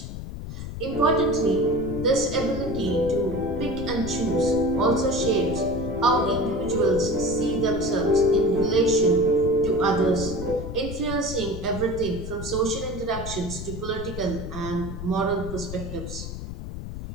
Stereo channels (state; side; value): noise; left; rumble, 8 dB below the sound